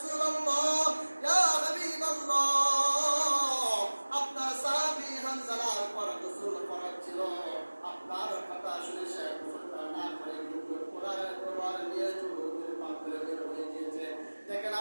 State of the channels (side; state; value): both; inverted; correlation -1.00